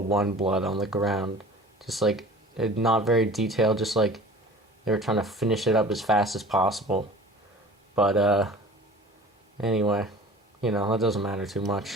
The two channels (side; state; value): both; normal; correlation 0.42